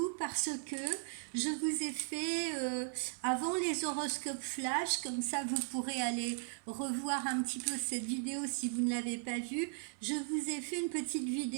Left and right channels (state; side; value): silent; left; 53 dB below the other